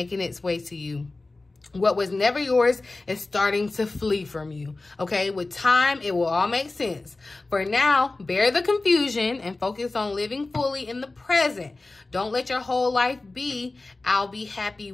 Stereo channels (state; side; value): quieter; right; 3.2 dB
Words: its way to you. What was never yours is starting to flee from you, okay? With time, it will all make sense. For now, bear the confusion and focus on living fully in the present. Don't let your whole life be, I'll be happy